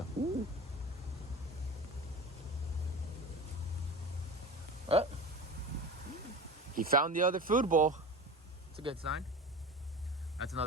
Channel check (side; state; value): both; normal; correlation 0.32